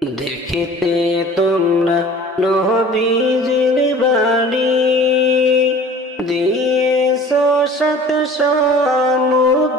দেখিতে তোমরা নবীজির বাড়ি দিয়েছ সাত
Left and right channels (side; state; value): both; normal; correlation 0.45